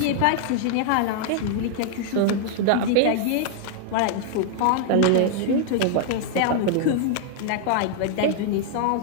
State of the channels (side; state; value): both; different; correlation 0.00